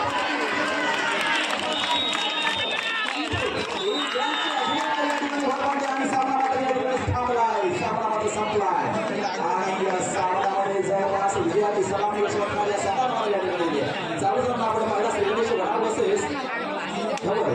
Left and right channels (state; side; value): identical; both; correlation 1.00